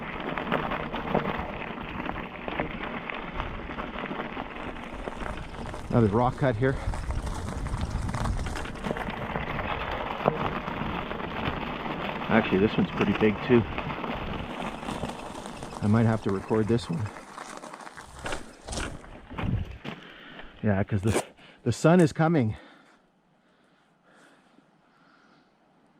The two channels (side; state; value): both; identical; correlation 1.00